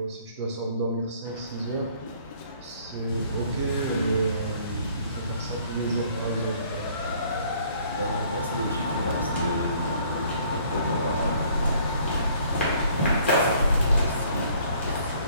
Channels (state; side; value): inverted; both; correlation -0.59